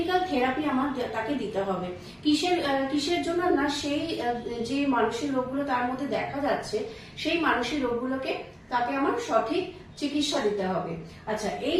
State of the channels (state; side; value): identical; both; correlation 1.00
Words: থেরাপি আমার তাকে দিতে হবে। কিসের জন্য না, সেই যে মানসিক রোগগুলো তার মধ্যে দেখা যাচ্ছে, সেই মানসিক রোগগুলোকে তাকে আমার সঠিক চিকিৎসা দিতে হবে। আচ্ছা, এই